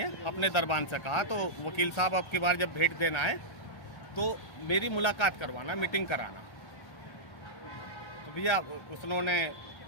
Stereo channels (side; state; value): right; late; 1.3 ms